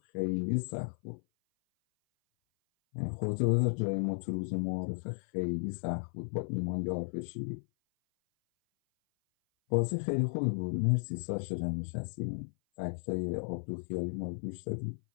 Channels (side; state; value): right; silent; 55 dB below the other